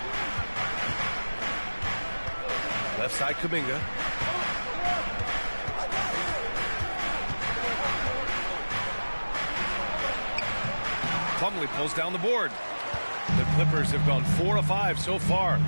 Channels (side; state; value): both; inverted; correlation -1.00